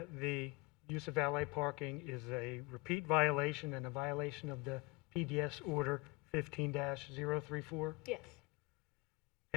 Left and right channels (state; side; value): quieter; right; 25.2 dB